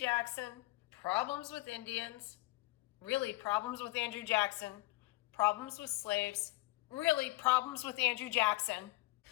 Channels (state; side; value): quieter; right; 21.0 dB